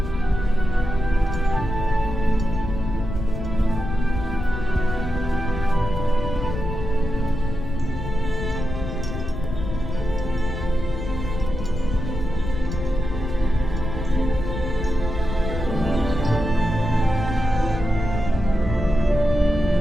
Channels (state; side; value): noise; left; rumble, 6 dB below the sound